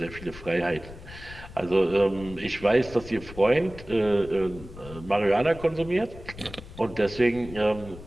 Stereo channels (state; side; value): noise; left; rumble, 15 dB below the sound